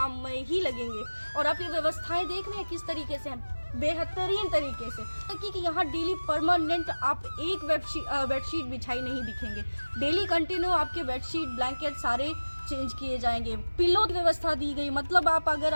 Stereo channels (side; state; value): both; inverted; correlation -1.00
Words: ही लगेंगे। और आप ये व्यवस्थाएं देख रहे हैं किस तरीके से हैं। बेहतरीन तरीके से, कि यहाँ डेली परमानेंट आप एक बेडशीट बिछाई नहीं दिखेंगे। डेली कंटिन्यू आपके बेडशीट ब्लैंकेट सारे चेंज किए जाएंगे। पिलो की व्यवस्था दी गई, मतलब आप अगर